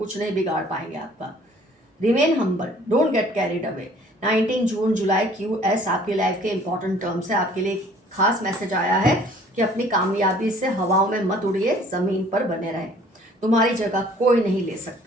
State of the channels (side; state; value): both; normal; correlation 0.55